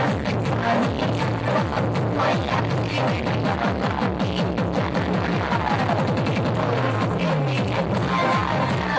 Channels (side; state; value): both; identical; correlation 1.00